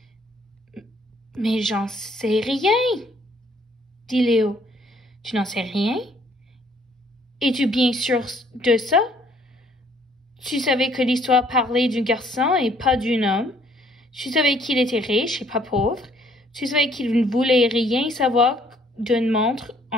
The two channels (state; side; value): normal; both; correlation 0.63